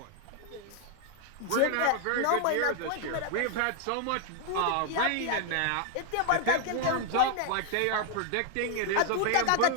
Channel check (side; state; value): both; different; correlation 0.00